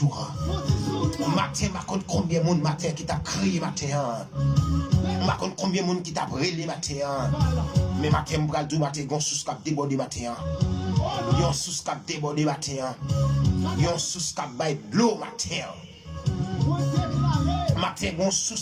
Matin, ma compte combien de monde matin qui t'a crié matin. Ma compte combien de monde qui t'a brûlé matin. Mais matin, m'bral du matin, yon sous cap débordé matin. Yon sous cap débordé matin. Yon sous cap bail de l'eau matin. Matin, yon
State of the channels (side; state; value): both; identical; correlation 1.00